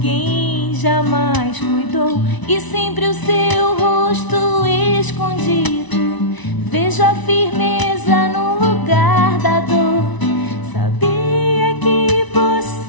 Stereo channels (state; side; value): late; right; 1.0 ms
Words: jamais cuidou. E sempre o seu rosto escondido, vejo a firmeza no lugar da dor. Sabia que